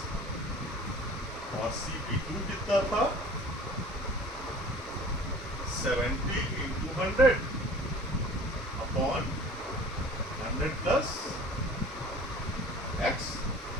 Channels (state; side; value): normal; both; correlation 0.45